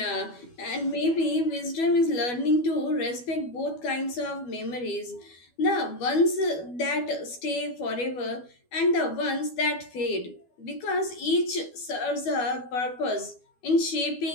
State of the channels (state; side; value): late; right; 12 ms